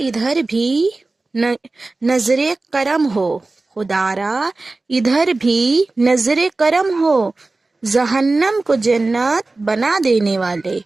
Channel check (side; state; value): left; quieter; 3.3 dB